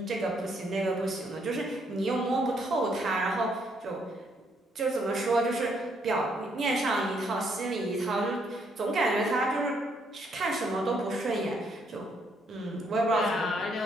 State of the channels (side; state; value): both; normal; correlation 0.72